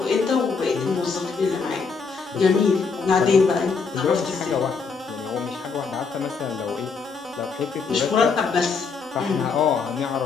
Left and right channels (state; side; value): quieter; right; 5.1 dB